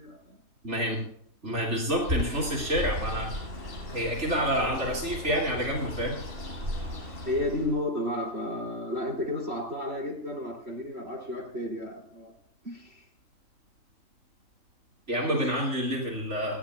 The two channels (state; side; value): late; left; 3.3 ms